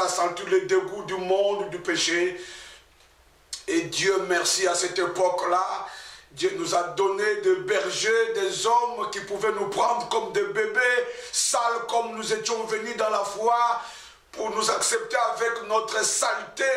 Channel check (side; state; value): both; identical; correlation 1.00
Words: à sentir le dégoût du monde, du péché. Et Dieu merci, à cette époque-là, Dieu nous a donné des bergers, des hommes qui pouvaient nous prendre comme des bébés, sales comme nous étions venus dans la foi, pour nous accepter avec notre saleté,